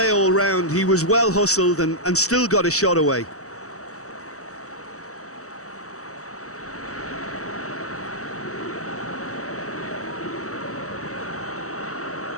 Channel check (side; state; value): right; late; 0.65 ms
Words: all round. He was well hustled and still got a shot away.